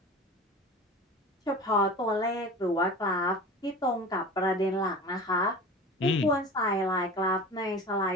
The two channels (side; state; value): both; normal; correlation 0.36